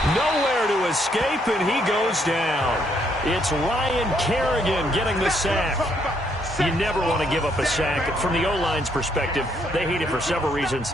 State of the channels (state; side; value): normal; both; correlation 0.72